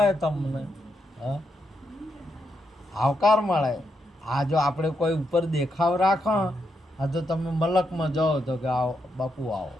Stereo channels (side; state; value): both; normal; correlation 0.81